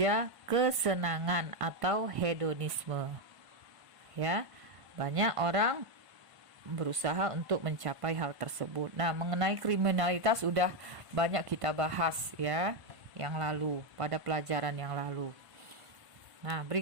kesenangan atau hedonisme. Ya, banyak orang berusaha untuk mencapai hal tersebut. Nah, mengenai kriminalitas sudah banyak kita bahas ya, yang lalu pada pelajaran yang lalu. Nah,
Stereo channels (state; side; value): late; left; 1.1 ms